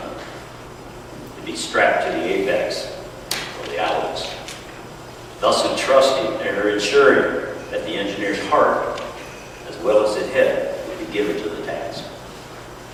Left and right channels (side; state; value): both; identical; correlation 1.00